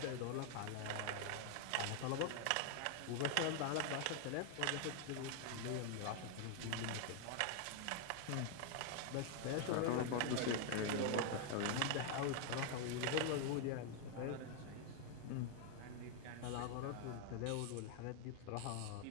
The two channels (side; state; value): both; different; correlation 0.00